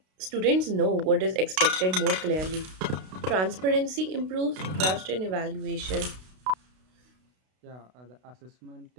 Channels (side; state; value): left; late; 32 ms